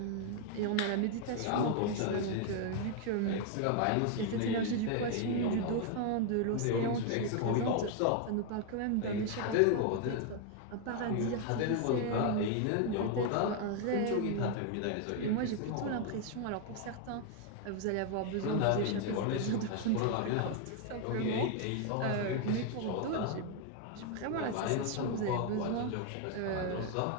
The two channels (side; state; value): both; different; correlation 0.01